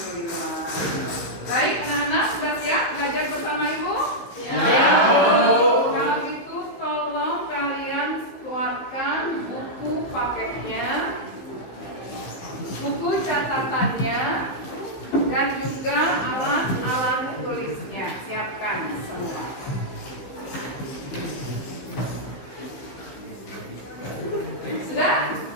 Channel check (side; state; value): right; late; 15 ms